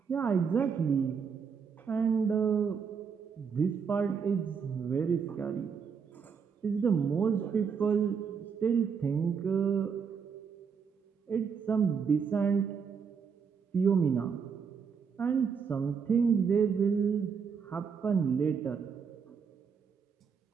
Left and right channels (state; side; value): quieter; left; 6.3 dB